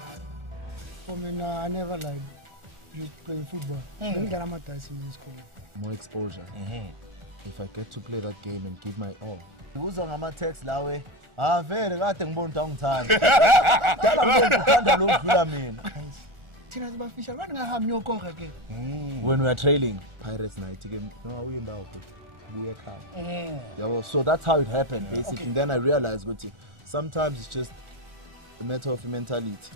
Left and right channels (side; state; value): left; late; 1.4 ms